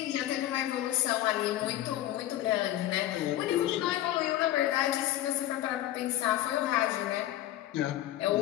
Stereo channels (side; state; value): right; quieter; 13.8 dB